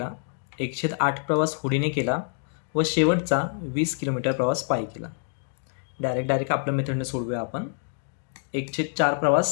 1/8 प्रवास होडीने केला व शेवटचा 20 किलोमीटर प्रवास पायी केला. डायरेक्ट आपल्या मेथडने सोडूया आपण. 1/4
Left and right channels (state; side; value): silent; right; 57 dB below the other